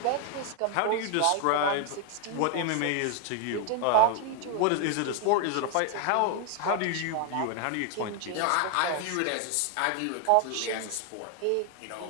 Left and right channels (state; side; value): different; both; correlation 0.00